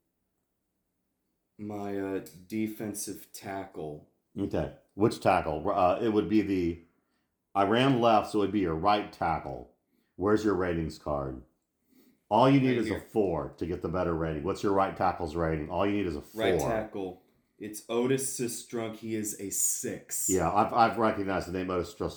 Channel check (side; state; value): both; identical; correlation 1.00